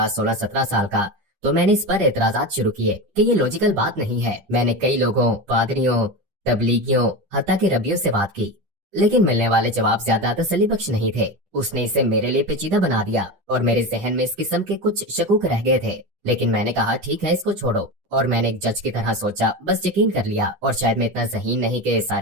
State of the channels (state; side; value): late; left; 10 ms